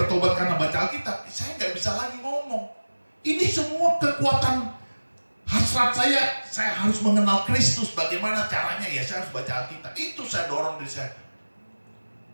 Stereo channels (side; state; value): both; inverted; correlation -1.00